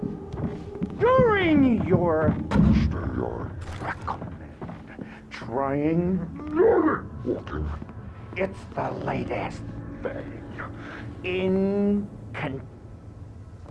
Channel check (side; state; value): both; identical; correlation 1.00